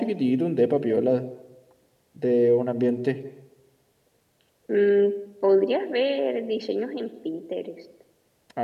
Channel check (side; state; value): both; identical; correlation 1.00